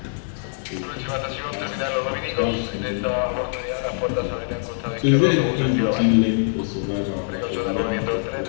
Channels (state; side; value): silent; right; 63 dB below the other